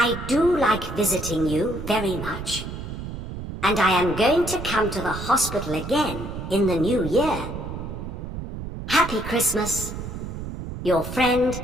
do like visiting you very much, and I am going to come to the hospital again in the new year. Happy Christmas, your friend,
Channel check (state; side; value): noise; right; rumble, 8 dB below the sound